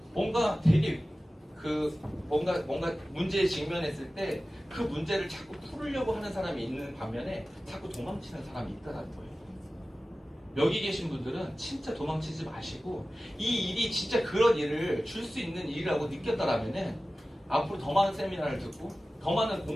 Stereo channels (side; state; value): both; normal; correlation 0.96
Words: 뭔가 되게 뭔가 문제에 직면했을 때 그 문제를 자꾸 풀으려고 하는 사람이 있는 반면에 자꾸 도망치는 사람이 있다는 거예요. 여기 계신 분들은 진짜 도망치지 마시고 이 일이 진짜 그런 일을 줄 수 있는 일이라고 느꼈다라면은 앞으로 더 많은 세미나를 듣고 더 많은